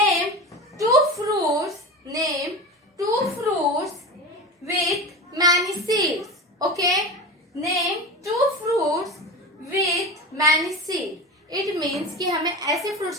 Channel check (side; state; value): both; normal; correlation 0.27